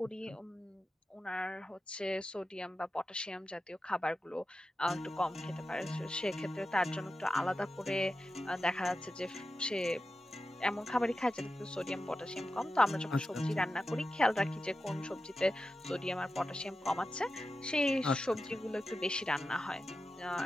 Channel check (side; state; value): both; normal; correlation 0.92